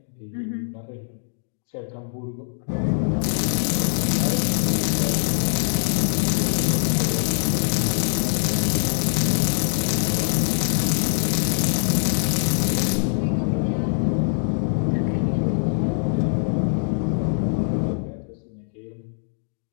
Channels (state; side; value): silent; right; digital silence